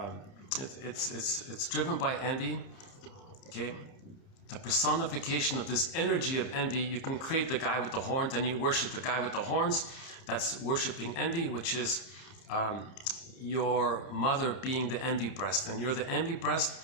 it's driven by envy, okay? The personification of this energy of envy, you can create the guy with the horns and you worship the guy with the horns. That's worshiping envy, which is your mother being the envy breast. And you're the envy breast,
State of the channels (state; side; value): late; right; 30 ms